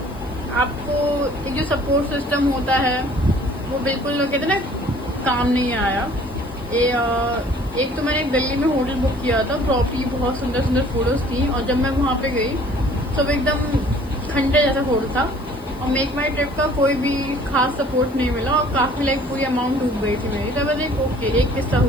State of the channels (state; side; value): noise; left; hiss, 26 dB below the sound